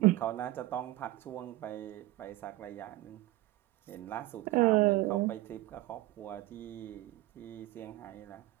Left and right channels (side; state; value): left; quieter; 17.3 dB